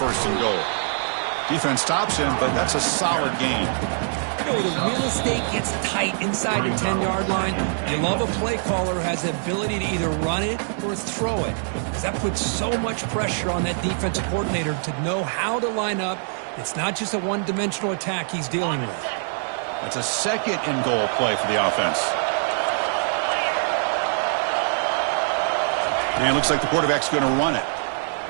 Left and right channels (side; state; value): left; silent; digital silence